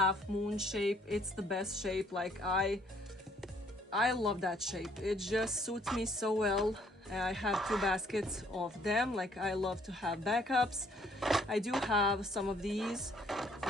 moon shape. It's the best shape. Like I love that shape. It just suits me so well. I have 2 baskets of them. Like I love to have backups. I do have some of these.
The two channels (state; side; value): normal; both; correlation 0.64